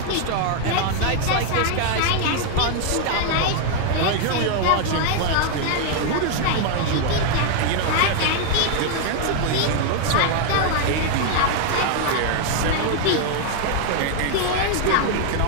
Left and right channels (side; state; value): both; different; correlation 0.00